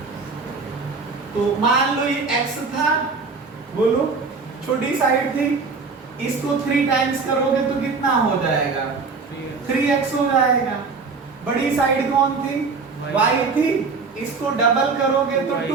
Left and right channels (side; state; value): left; quieter; 4.6 dB